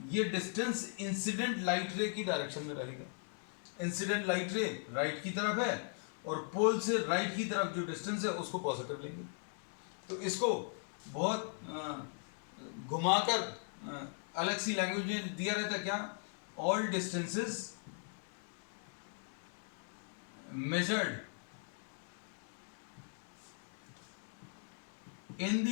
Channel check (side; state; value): right; silent; 52 dB below the other